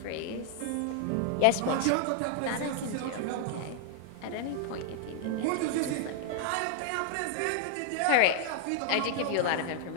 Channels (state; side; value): different; both; correlation 0.00